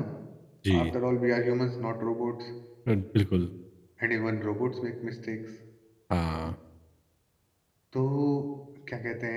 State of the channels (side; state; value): both; identical; correlation 1.00